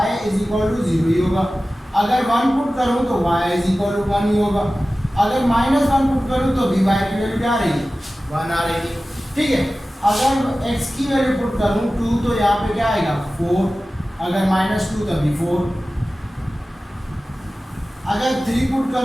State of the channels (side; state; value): both; normal; correlation 0.96